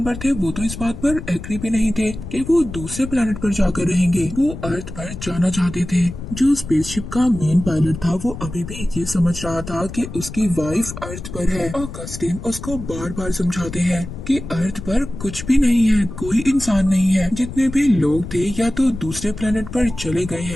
थे वो तो इस बात पर एग्री भी नहीं थे कि वो दूसरे प्लेनेट पर जाकर रहेंगे। वो अर्थ पर जाना चाहते थे। जो स्पेसशिप का मेन पायलट था वो अभी भी ये समझ रहा था कि उसकी वाइफ अर्थ पर है। ऑगस्टिन उसको बार बार समझाते हैं कि अर्थ पर कुछ भी नहीं है, कोई इंसान नहीं है। जितने भी लोग थे या तो दूसरे प्लेनेट पर चले गए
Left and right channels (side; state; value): left; noise; rumble, 10 dB below the sound